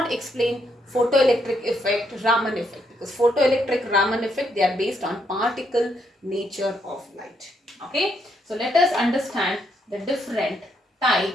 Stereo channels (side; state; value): both; normal; correlation 0.76